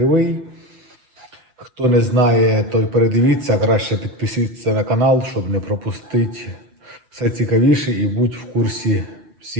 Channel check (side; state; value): left; late; 7.9 ms